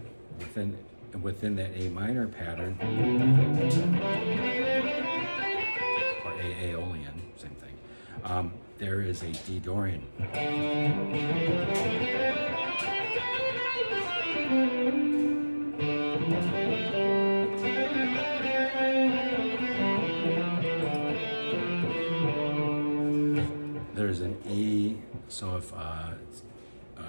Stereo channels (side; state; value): both; inverted; correlation -1.00